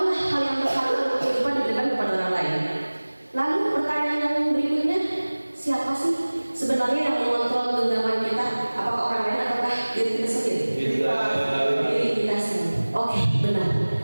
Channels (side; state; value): both; inverted; correlation -1.00